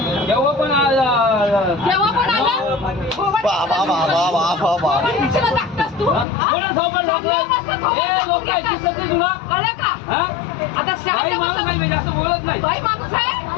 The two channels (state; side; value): drops out; right; at 6.2 s